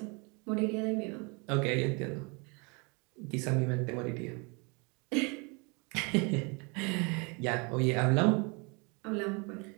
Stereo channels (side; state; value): left; quieter; 31.2 dB